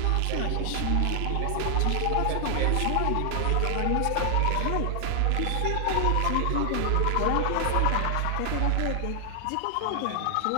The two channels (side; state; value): both; different; correlation 0.00